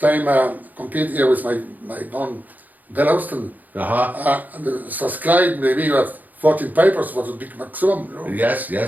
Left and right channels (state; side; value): late; left; 0.082 ms